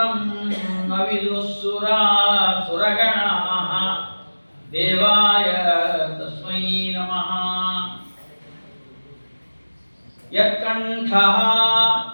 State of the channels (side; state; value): both; inverted; correlation -1.00